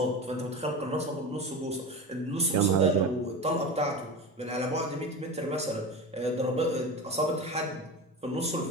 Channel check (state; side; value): normal; both; correlation 0.26